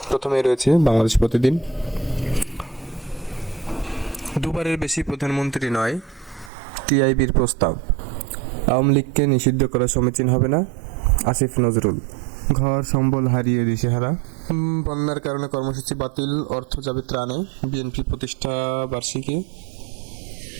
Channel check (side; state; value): left; drops out; at 6.5 s